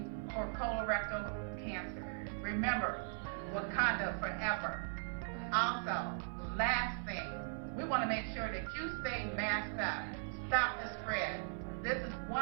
for colorectal cancer. Remember, Wakanda forever. Also, last thing, we want to make sure that you stay masked up. Stop the spread. This is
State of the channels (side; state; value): left; silent; 52 dB below the other